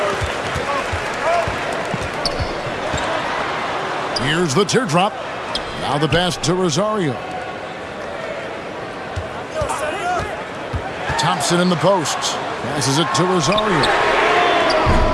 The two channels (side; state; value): both; identical; correlation 1.00